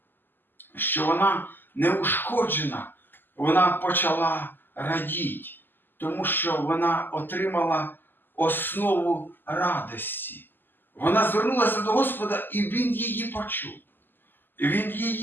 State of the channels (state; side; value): late; right; 0.093 ms